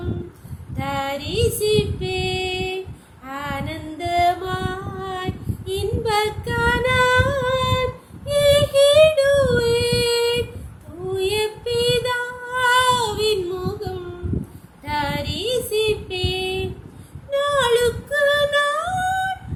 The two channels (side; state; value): both; identical; correlation 1.00